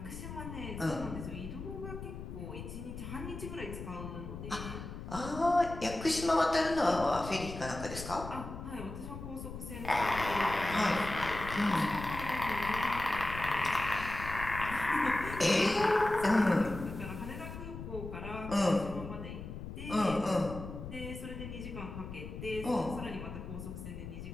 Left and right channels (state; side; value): noise; left; rumble, 9 dB below the sound